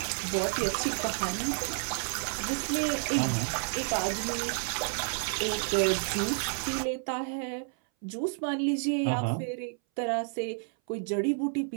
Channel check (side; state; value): left; silent; 58 dB below the other